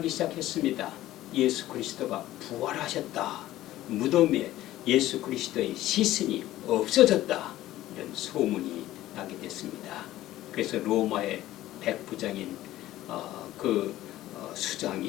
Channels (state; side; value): quieter; right; 15.0 dB